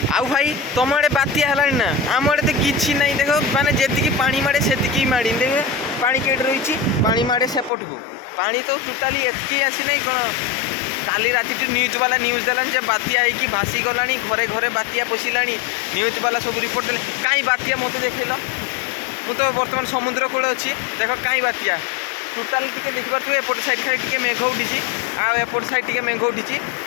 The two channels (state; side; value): drops out; right; at 7.7 s